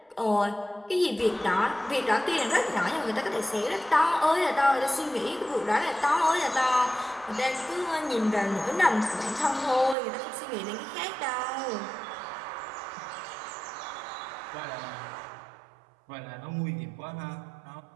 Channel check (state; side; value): drops out; left; at 10.0 s